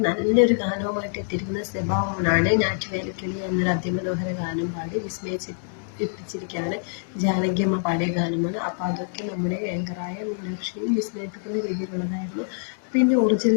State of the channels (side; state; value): right; silent; digital silence